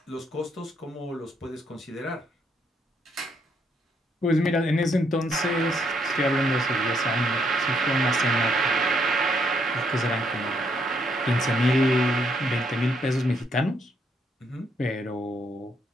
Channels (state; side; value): normal; both; correlation 0.73